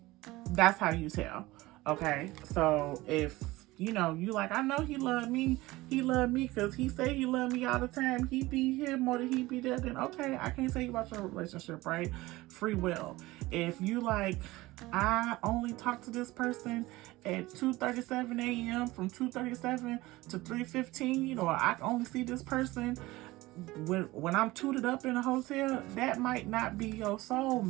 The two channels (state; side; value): quieter; left; 19.4 dB